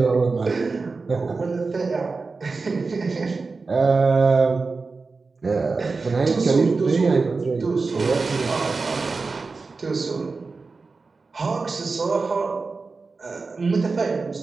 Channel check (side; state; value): left; quieter; 4.1 dB